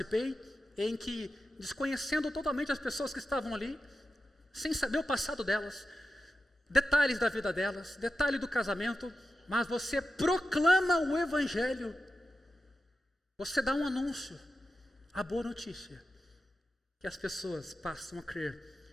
em que, desconhecendo totalmente as pessoas que estavam ali, sem saber o passado delas, detalhes da vida delas, detalhe do casamento, mas você proclama o Evangelho, você dá um anúncio, a boa notícia, que as pessoas passam a crer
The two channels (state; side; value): normal; both; correlation 0.91